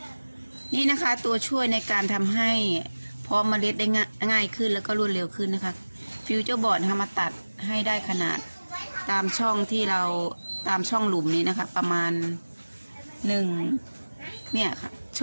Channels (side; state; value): both; inverted; correlation -1.00